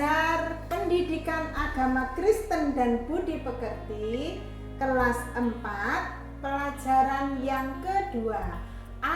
pendidikan agama Kristen dan budi pekerti kelas 4, pelajaran yang kedua,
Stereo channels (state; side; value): identical; both; correlation 1.00